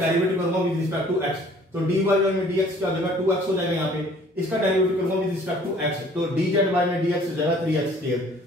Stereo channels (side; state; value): both; normal; correlation 0.54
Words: करूंगा विद रिस्पेक्ट टू x, तो dy में dx क्या हो जाएगा, 2x हो जाएगा। यहाँ पे इसका डेरिवेटिव करूंगा विद रिस्पेक्ट टू x, तो dz में dx हो जाएगा 3x स्क्वायर।